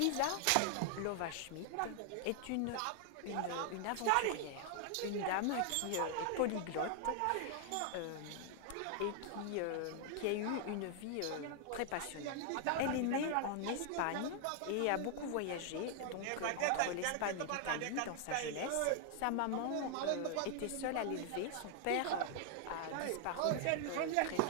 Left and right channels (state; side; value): different; both; correlation 0.00